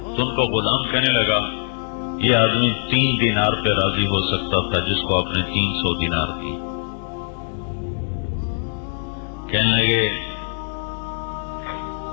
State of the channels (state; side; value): silent; right; digital silence